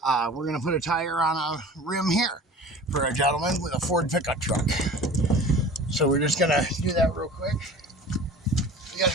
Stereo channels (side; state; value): both; normal; correlation 0.41